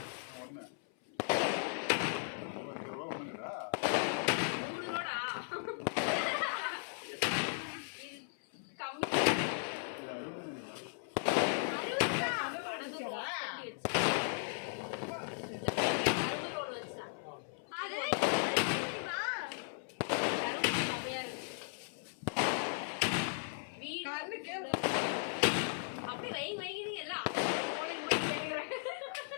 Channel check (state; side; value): silent; right; 53 dB below the other